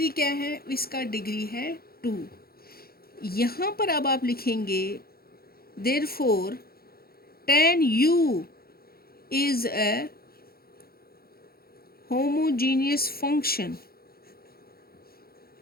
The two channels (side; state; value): right; late; 0.44 ms